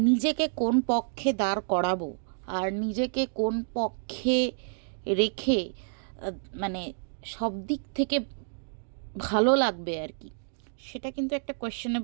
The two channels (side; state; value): left; silent; digital silence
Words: নিজেকে কোন পক্ষে দাঁড় করাবো আর নিজেকে কোন পক্ষে রেখে আ মানে সব দিক থেকে ভালো লাগবে আর কি, সেটা কিন্তু একটা